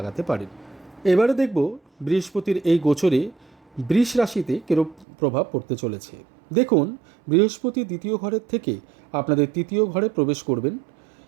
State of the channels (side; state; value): left; drops out; at 5.1 s